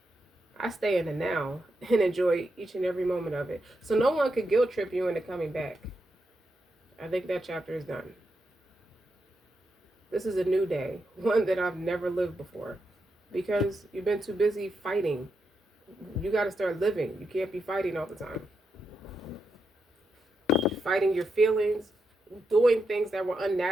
I stay in the now and enjoy each and every moment of it. So no one could guilt trip you into coming back. I think that chapter is done. This is a new day, one that I've never lived before. Because you've been too busy fighting. You got to start living. You can't be fighting all the time. Fighting your feelings, doing things that were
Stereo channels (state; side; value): normal; both; correlation 0.84